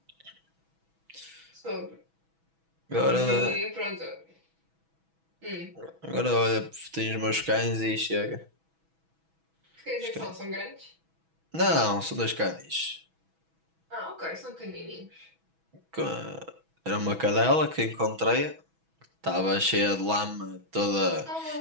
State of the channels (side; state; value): left; late; 6.1 ms